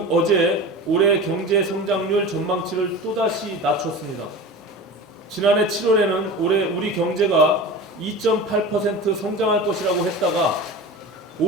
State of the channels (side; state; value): both; normal; correlation 0.32